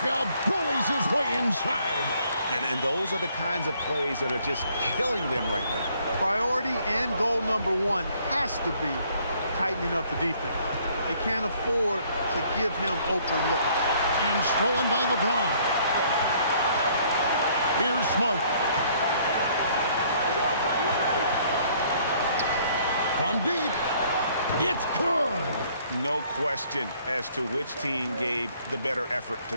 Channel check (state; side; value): inverted; both; correlation -0.62